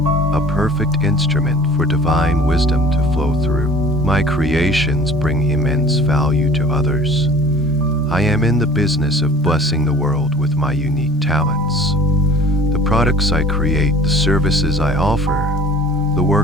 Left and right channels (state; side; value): noise; right; rumble, 23 dB below the sound